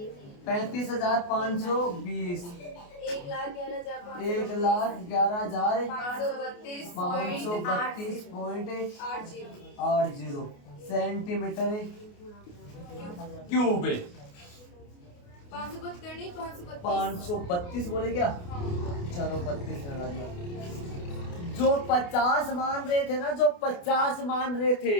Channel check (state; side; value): late; right; 28 ms